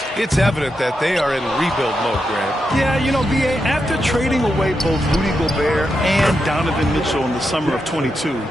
it's evident that they are in rebuild mode, Grant. Yeah, you know, B.A., after trading away both Rudy Gobert and Donovan Mitchell in the summer of 22,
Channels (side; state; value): both; normal; correlation 0.86